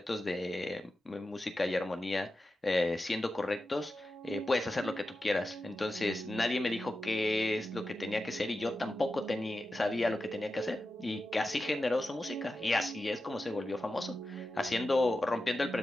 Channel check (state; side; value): normal; both; correlation 0.92